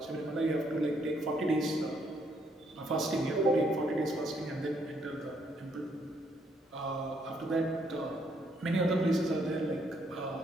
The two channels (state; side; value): normal; both; correlation 0.71